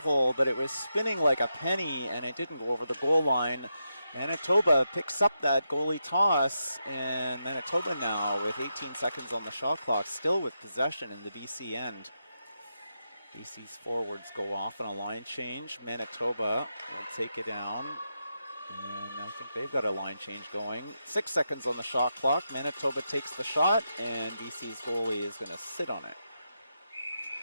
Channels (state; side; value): inverted; both; correlation -0.85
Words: but it was spinning like a penny and it didn't go over the goal line. Manitoba picks up that goalie toss, and Manitoba now with 18 seconds on the shot clock, still with possession in the BC end. BC's forwards go off on a line change. Manitoba will take it down, and I think they've got a line change going. 6 seconds on the shot clock. Manitoba takes the shot, and BC's goalie is going to sit on it.